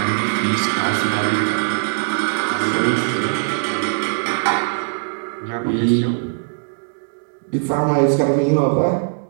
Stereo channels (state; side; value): silent; left; digital silence